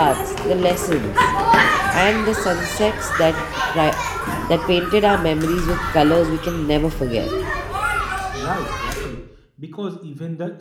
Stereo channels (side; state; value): both; identical; correlation 1.00